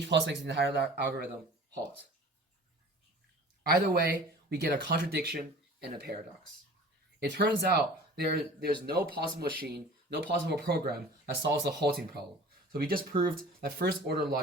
makes the entire algorithm halt. Either way, we get a contradiction and a paradox. It turns out there's no possible machine, no possible program that solves the halting problem. So we just proved that first-order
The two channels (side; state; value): both; normal; correlation 0.44